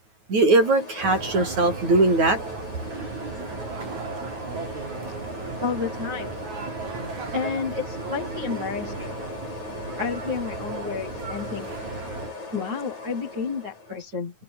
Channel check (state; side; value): late; left; 9.3 ms